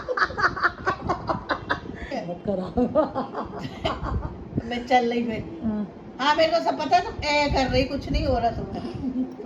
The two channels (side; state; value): both; identical; correlation 1.00